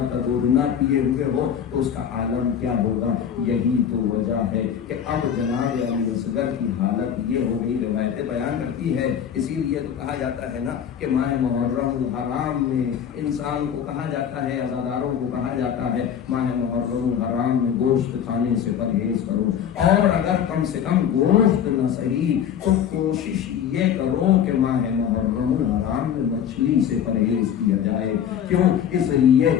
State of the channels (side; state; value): right; quieter; 8.8 dB